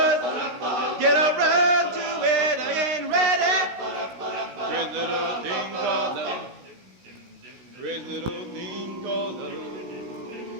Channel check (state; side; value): late; left; 16 ms